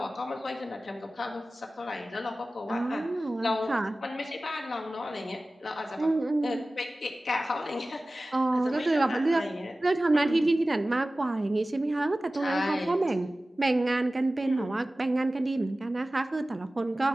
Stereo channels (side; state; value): both; normal; correlation 0.96